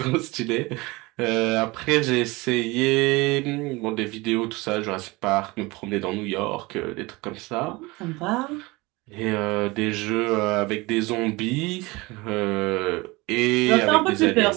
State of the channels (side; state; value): left; quieter; 23.0 dB